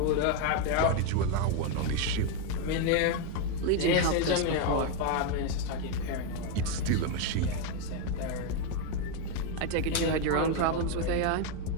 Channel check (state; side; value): different; both; correlation 0.02